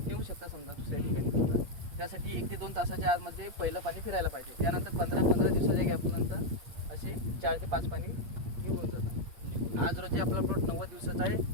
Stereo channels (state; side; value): late; left; 8.6 ms